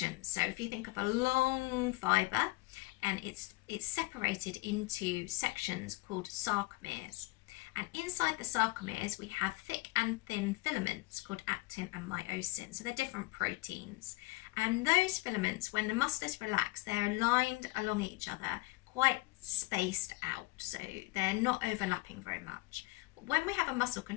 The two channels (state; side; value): quieter; right; 23.2 dB